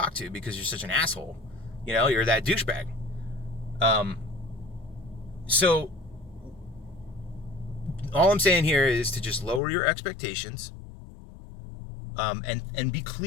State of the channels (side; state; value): right; drops out; at 9.6 s